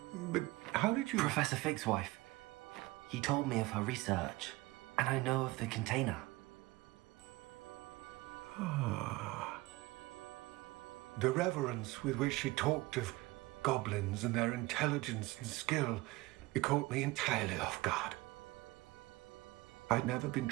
But how did you... Professor Fig's wife. He told me of her research, and I know of the container. Ah. The reverence with which she talked of goblins and their intelligence and skill, it caught me entirely off guard. I'd never been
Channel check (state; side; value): quieter; left; 20.7 dB